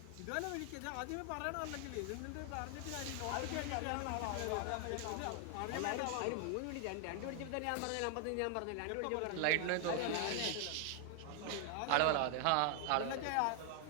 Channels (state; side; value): different; both; correlation 0.00